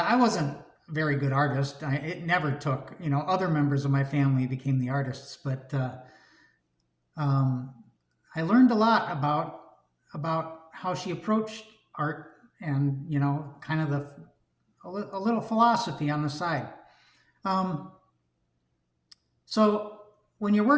wasn't a very good artist. It never took. Other members of my family became the artists, but um, I learned a lot about how she approached art, and kind of a little philosophy on the side. Um, so when you're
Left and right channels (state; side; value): identical; both; correlation 1.00